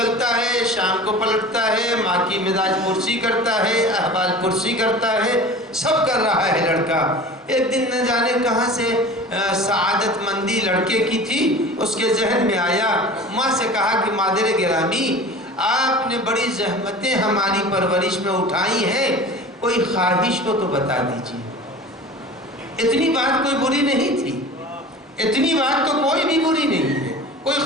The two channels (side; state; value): both; normal; correlation 0.38